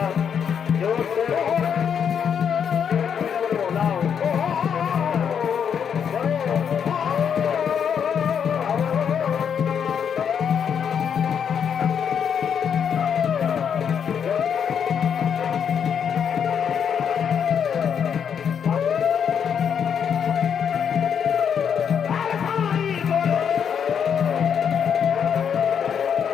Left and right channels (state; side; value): quieter; right; 7.7 dB